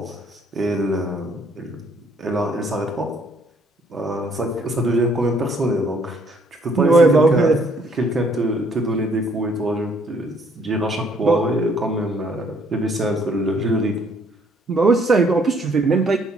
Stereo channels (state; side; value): normal; both; correlation 0.64